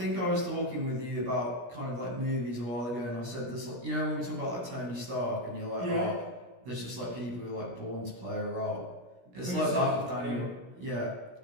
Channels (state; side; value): late; left; 17 ms